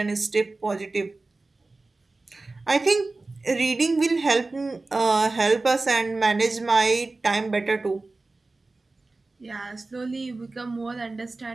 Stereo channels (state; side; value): quieter; left; 3.4 dB